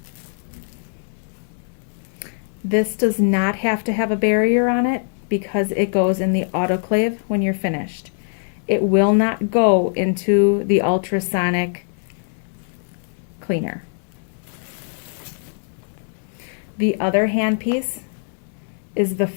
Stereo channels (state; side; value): silent; right; 64 dB below the other